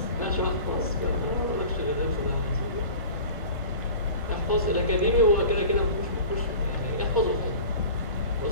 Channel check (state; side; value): inverted; both; correlation -0.39